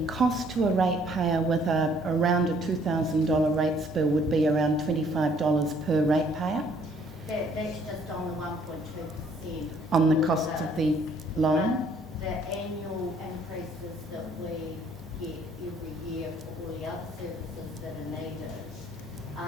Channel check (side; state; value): both; normal; correlation 0.62